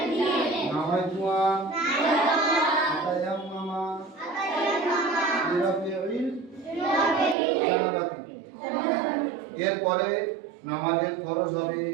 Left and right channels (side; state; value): left; drops out; at 7.4 s